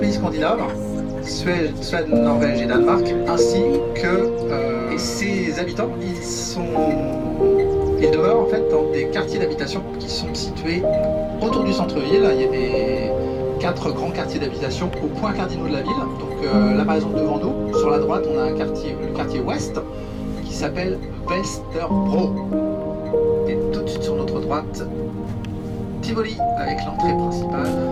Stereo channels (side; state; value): both; identical; correlation 1.00